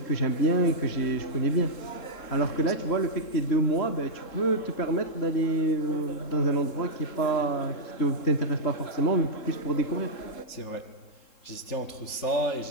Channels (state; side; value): late; right; 3.7 ms